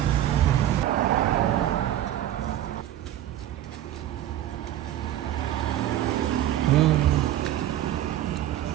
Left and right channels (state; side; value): quieter; left; 12.5 dB